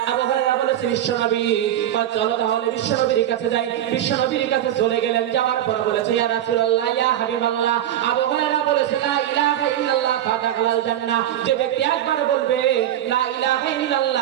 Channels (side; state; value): left; quieter; 11.7 dB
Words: আবু হুরায়রা বলেছে বিশ্বনবী। চলো তাহলে বিশ্বনবীর কাছে যাই। বিশ্বনবীর কাছে চলে গেলেন, যাওয়ার পর বলেছে ইয়া রাসূলুল্লাহ ইয়া হাবিবাল্লাহ। আবু হুরায়রা বলেছে লা ইলাহা ইল্লাল্লাহ ফাদাখালাল জান্নাহ। যে ব্যক্তি একবার বলবে লা ইলাহা